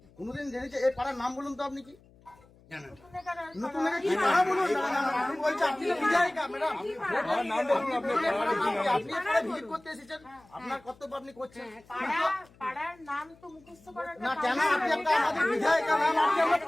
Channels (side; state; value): left; noise; hum, 27 dB below the sound